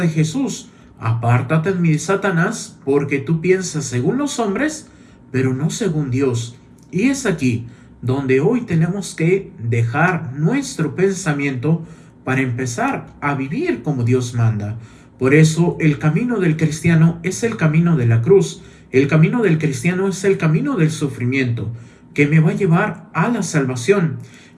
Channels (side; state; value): both; identical; correlation 1.00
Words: de Jesús? Apártate de mí, Satanás, porque tú piensas según los hombres, pero no según Dios. Y es aquí donde hoy tenemos que dejar nuestro pensamiento para empezar a vivir como Dios manda. Por eso el camino del cristiano es el camino de la cruz. El camino del cristiano es el camino del sufrimiento, que me va a llevar a la salvación.